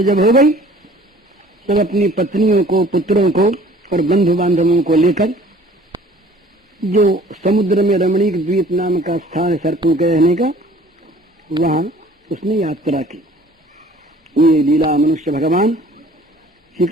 जब हो गई, तब अपनी पत्नियों को, पुत्रों को और बंधु बांधवों को लेकर जो समुद्र में रमणीक द्वीप नाम का स्थान है सर्पों के रहने का, वहां उसने यात्रा की। ये लीला मनुष्य भगवान श्री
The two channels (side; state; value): both; normal; correlation 0.52